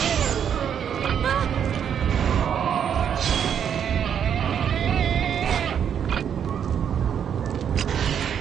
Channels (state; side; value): quieter; left; 8.4 dB